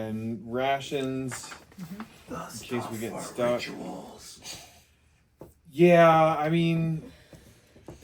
rations in case we get stuck. Yeah, I mean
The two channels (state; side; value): identical; both; correlation 1.00